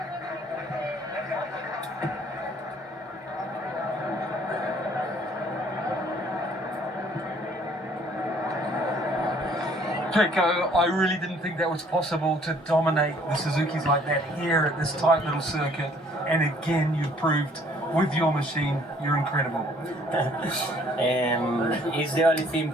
Pecco, I really didn't think that was possible to dominate the Suzukis like that here at this tight little circuit. And again, you proved with your machine, you're incredible. It's the only thing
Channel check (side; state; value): both; normal; correlation 0.59